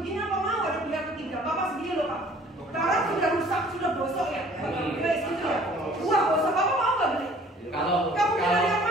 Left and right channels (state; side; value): normal; both; correlation 0.53